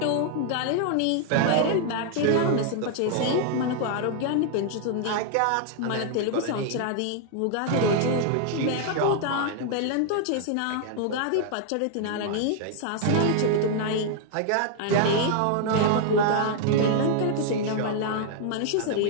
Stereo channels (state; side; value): different; both; correlation 0.00